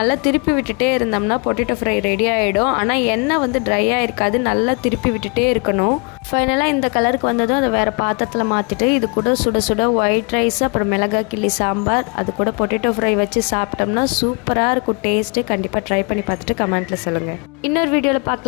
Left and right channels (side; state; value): right; quieter; 33.7 dB